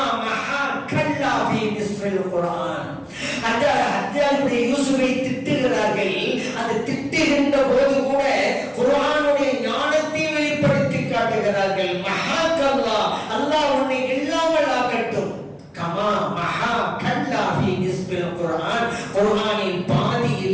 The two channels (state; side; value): identical; both; correlation 1.00